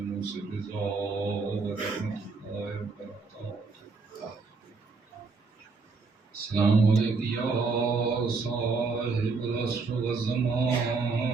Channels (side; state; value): left; quieter; 4.3 dB